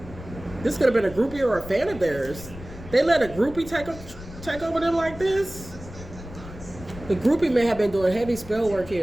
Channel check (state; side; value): noise; left; rumble, 15 dB below the sound